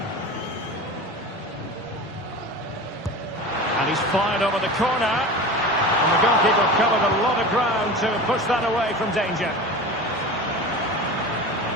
And he's fired over the corner. And the goalkeeper covered a lot of ground to push that away from danger.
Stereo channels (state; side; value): normal; both; correlation 0.32